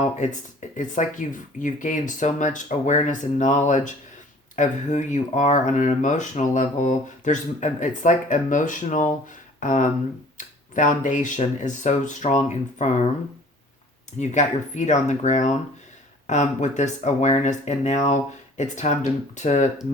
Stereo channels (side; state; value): both; normal; correlation 0.50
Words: it's like you've gained so much awareness and knowledge of who you are on an emotional level. It's like emotional foundation is so strong and firm. You've got your feet on the ground with this awareness, and now it's time to